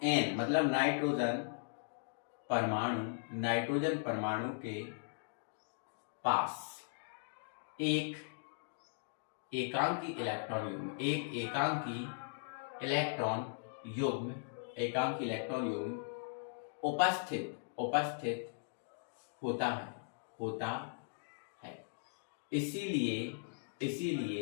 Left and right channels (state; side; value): silent; right; digital silence